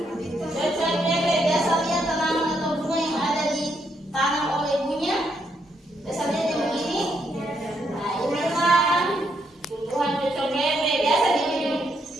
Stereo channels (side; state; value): both; normal; correlation 0.76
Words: cocok bebek. Biasa lihat tanaman atau bunga yang ada ditanam oleh ibunya. Biasa lihat yang begini. Nah, inilah tumbuhan cocok bebek. Biasa